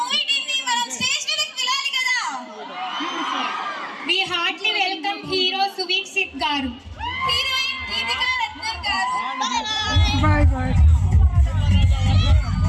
టీం ని మనం స్టేజ్ మీదకి పిలాలి కదా. We heartily welcome hero Suvikshit garu. Heroine Deepika Ratnan గారు.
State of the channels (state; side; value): identical; both; correlation 1.00